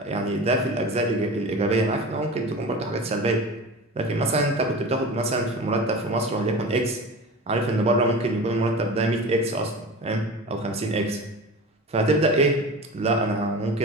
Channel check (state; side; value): normal; both; correlation 0.33